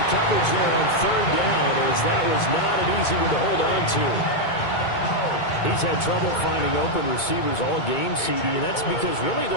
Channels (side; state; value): right; late; 2.2 ms